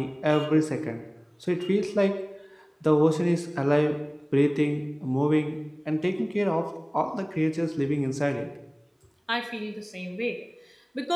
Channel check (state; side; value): identical; both; correlation 1.00